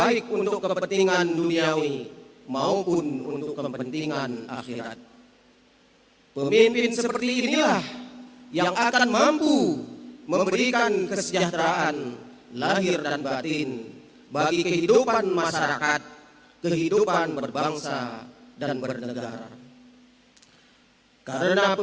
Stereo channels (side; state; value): both; identical; correlation 1.00